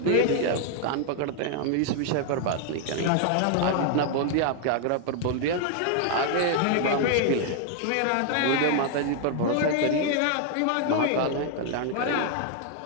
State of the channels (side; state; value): both; different; correlation 0.00